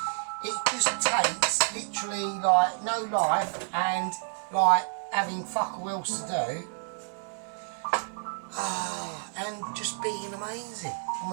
It just takes literally like no life and like having fuck all else to do, and just being amazing. I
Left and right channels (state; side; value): silent; left; 58 dB below the other